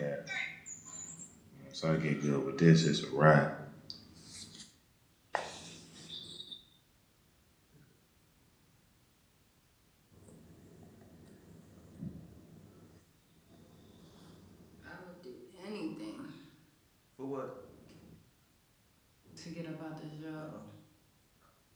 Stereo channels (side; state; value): both; identical; correlation 1.00